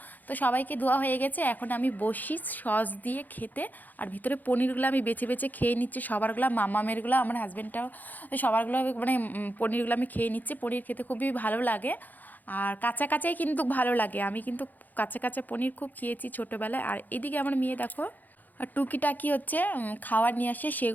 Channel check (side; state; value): right; late; 0.084 ms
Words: তো সবাইকে দেওয়া হয়ে গেছে, এখন আমি বসি সস দিয়ে খেতে। আর ভিতরে পনিরগুলো আমি বেছে বেছে খেয়ে নিচ্ছি, সবারগুলো, মামামেরগুলো, আমার হাজব্যান্ডটাও সবারগুলো, মানে পনিরগুলো আমি খেয়ে নিচ্ছি। পনির খেতে খুবই ভালো লাগে, আর কাঁচা কাঁচাই কিন্তু ভালো লাগে। আমি কিন্তু কাঁচা কাঁচা পনির খুব খেয়েছি ছোটোবেলায়। আর এদিকে আমার মেয়ে দেখো, আর টুকিটাকি হচ্ছে খাবার নিয়ে আসে,